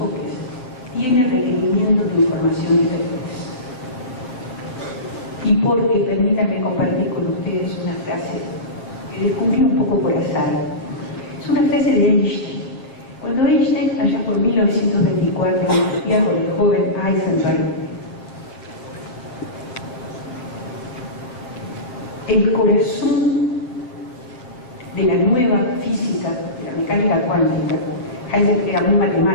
tiene requerimientos de información diferentes. Y porque, permítanme compartir con ustedes una frase que descubrí un poco por azar. Es una frase de Einstein, Cuando Einstein, allá por 1924, discutía con el joven Heisenberg, el corazón de la nueva física, de la mecánica cuántica, Heisenberg era muy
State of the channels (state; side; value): late; right; 7.8 ms